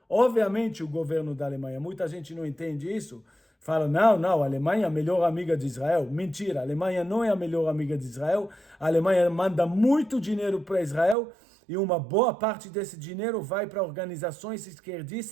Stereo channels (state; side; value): drops out; left; at 11.2 s